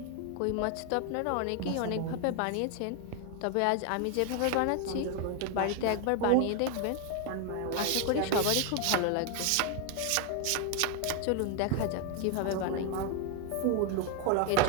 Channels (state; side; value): different; both; correlation 0.01